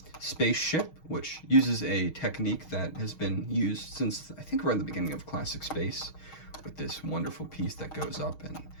spaceship, which uses a technique that has been used since, I think, around the beginning of classic space, with this wonderful piece that goes up and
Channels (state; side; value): late; right; 6.4 ms